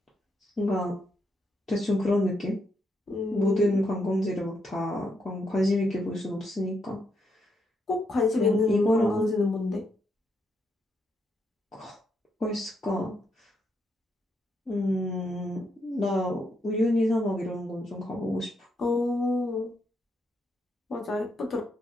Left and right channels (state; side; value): normal; both; correlation 0.78